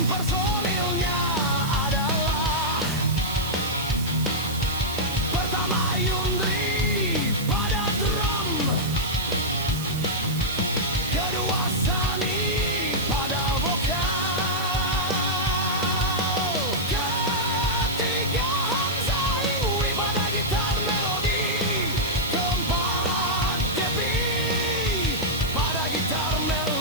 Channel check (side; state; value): right; noise; hiss, 12 dB below the sound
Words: personilnya adalah pertama Yundri pada drum, kedua Sani pada vokal, ketiga Hamzah Ingwi pada gitar melodi, keempat Depi pada gitar